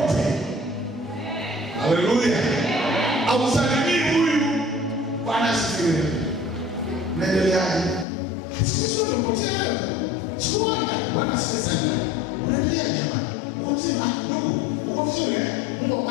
Haleluya. Ausalimii huyu Bwana asifiwe. Unaendeleaje? Sisi tumepotea wewe. Sikuona Bwana asifiwe sana. Unaendelea jamani? Uko mzima? Ndugu, uko vizuri eh? Mungu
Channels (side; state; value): right; drops out; at 8.1 s